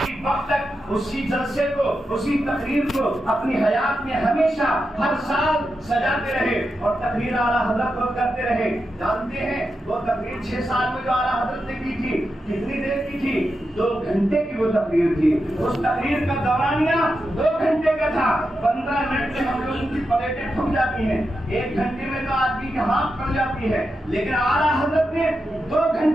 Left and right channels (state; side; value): normal; both; correlation 0.88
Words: وقت تک اسی جلسے کو اسی تقریر کو اپنی حیات میں ہمیشہ ہر سال سجاتے رہے اور تقریر اعلیٰ حضرت کو کرتے رہے. جانتے ہیں وہ تقریر 6 سال میں جو اعلیٰ حضرت نے کی تھی کتنی دیر کی تھی 2 گھنٹے کی وہ تقریر تھی. اس تقریر کا دورانیہ 2 گھنٹے کا تھا. 15 منٹ میں ہم لوگوں کی پلیٹیں ٹھک جاتی ہیں 1 گھنٹے میں تو آدمی کی ہاتھ پڑ جاتی ہے لیکن اعلیٰ حضرت نے 2